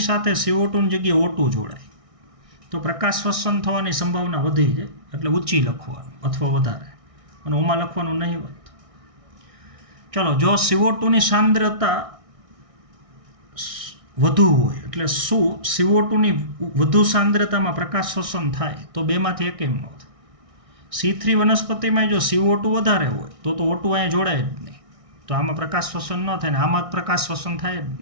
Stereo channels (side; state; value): left; late; 1.6 ms